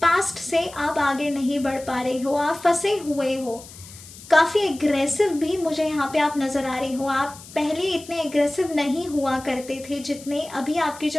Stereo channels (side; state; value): left; noise; hiss, 18 dB below the sound